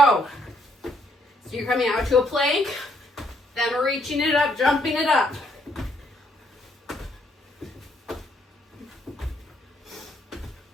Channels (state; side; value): normal; both; correlation 0.70